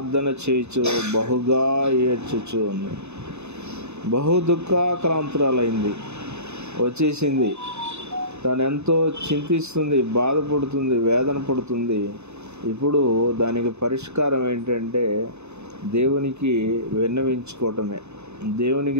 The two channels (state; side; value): late; left; 0.81 ms